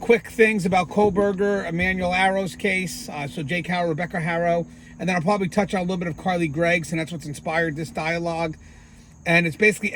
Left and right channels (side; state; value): both; identical; correlation 1.00